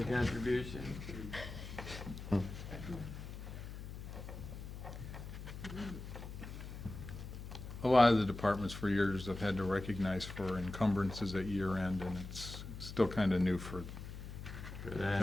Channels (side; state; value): left; noise; hum, 10 dB below the sound